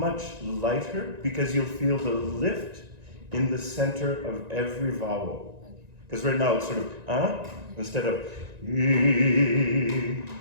lighter because you'll feel the lift in the center of every vowel. Because right now it's sort of instead of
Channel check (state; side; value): late; left; 1.9 ms